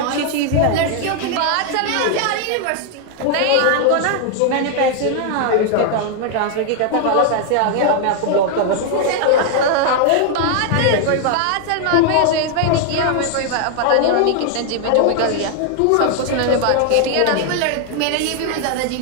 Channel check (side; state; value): both; different; correlation 0.00